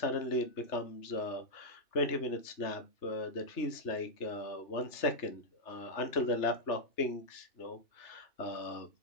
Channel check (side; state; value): right; late; 3.3 ms